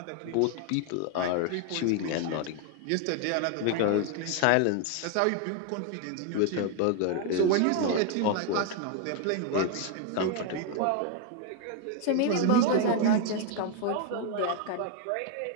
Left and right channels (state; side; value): different; both; correlation 0.00